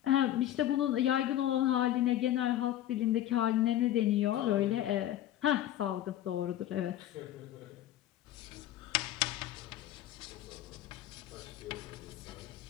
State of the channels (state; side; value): quieter; right; 12.7 dB